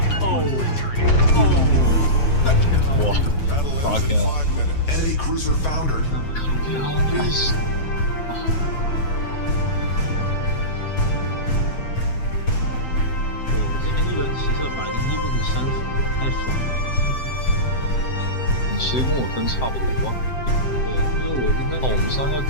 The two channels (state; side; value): late; right; 7.7 ms